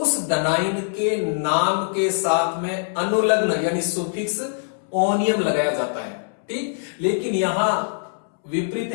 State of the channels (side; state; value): right; silent; 64 dB below the other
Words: धनाइन के नाम के साथ में अनुलग्न यानी सुफिक्स ओनियम लगाया जाता है। ठीक, लेकिन यहां विपरीत